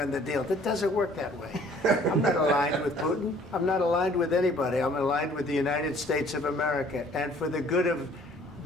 the deal?" That doesn't work that way. I'm not aligned with Putin. I'm not aligned with anybody. I'm aligned with the United States of America and for the good of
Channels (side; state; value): both; normal; correlation 0.56